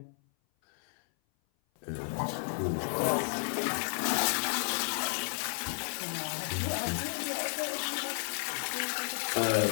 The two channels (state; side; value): silent; right; 56 dB below the other